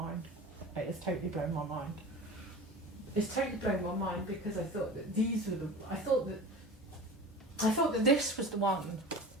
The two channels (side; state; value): both; normal; correlation 0.35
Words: It has totally blown my mind. It's totally blown my mind because I thought that these were I thought that this was the one,